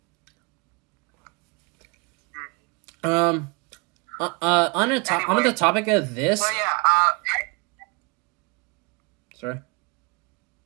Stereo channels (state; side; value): quieter; left; 30.1 dB